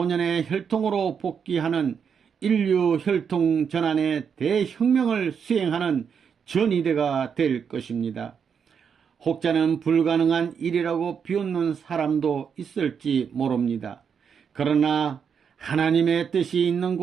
혈통으로 복귀하는 인류 혈통 전환의 대혁명을 수행하는 전이대가 될 것입니다. 혹자는 불가능한 일이라고 비웃는 사람도 있을지 모릅니다. 그러나 하나님의 뜻이 있는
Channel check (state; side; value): quieter; left; 6.9 dB